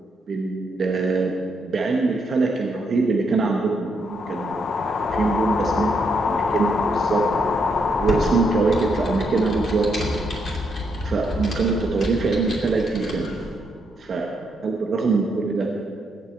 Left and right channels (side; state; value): both; normal; correlation 0.77